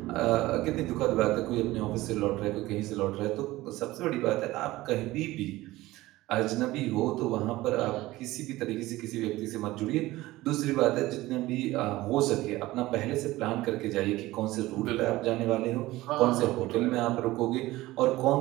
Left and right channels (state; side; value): quieter; left; 17.9 dB